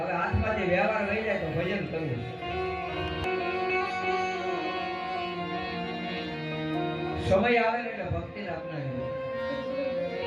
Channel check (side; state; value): both; identical; correlation 1.00